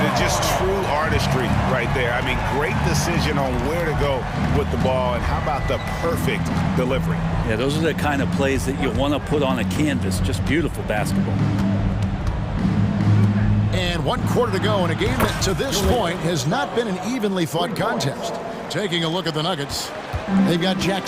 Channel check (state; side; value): identical; both; correlation 1.00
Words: Just true artistry right there. I mean, great decision on where to go with the ball, and how about the perfect delivery? Yeah, those are the kind of plays that you want to put on a canvas. Just beautiful basketball. And 1 quarter to go in a game that to this point has not been an evenly fought contest. Taking a look at the Nuggets, they've got